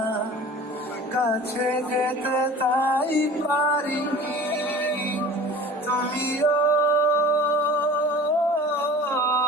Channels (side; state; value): both; normal; correlation 0.41